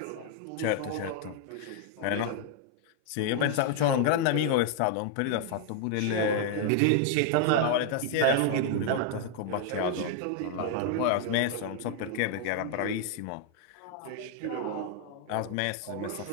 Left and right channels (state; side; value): different; both; correlation 0.00